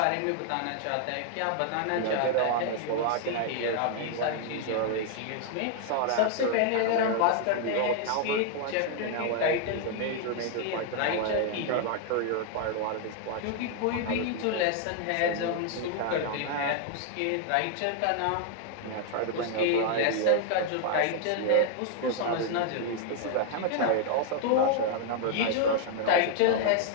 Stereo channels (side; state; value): both; different; correlation 0.00